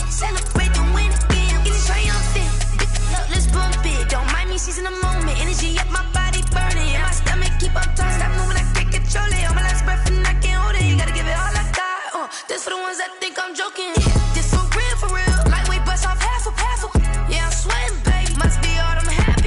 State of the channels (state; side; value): identical; both; correlation 1.00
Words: celebrate the win again. It's triumphant, let's bump it. Don't mind me seizing the moment, energy up my body burning. And my stomach keep up tight, stop moving, I can't control it. On my last breath and I can't hold it, you gotta give it all I got. This for the ones that think I'm joking. This for real, lightweight bust off half a. Yeah, I'm sweating, babe, must be all them happy